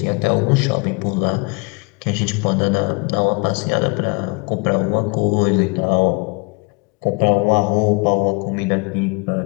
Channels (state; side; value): quieter; right; 30.1 dB